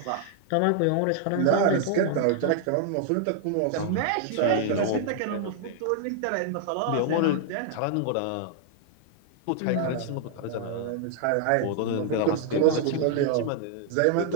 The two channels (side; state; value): both; different; correlation 0.00